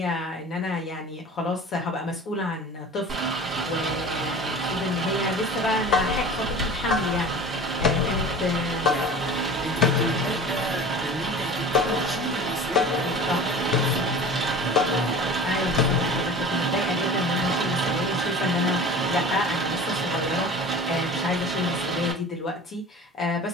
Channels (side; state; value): both; normal; correlation 0.38